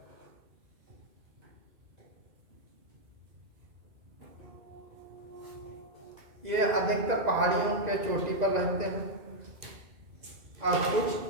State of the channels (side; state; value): left; late; 2.0 ms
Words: ये अधिकतर पहाड़ियों के चोटी पर रहते हैं और कुछ